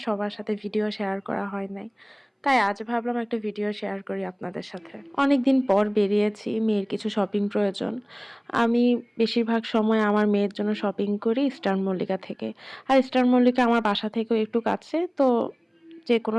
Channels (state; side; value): identical; both; correlation 1.00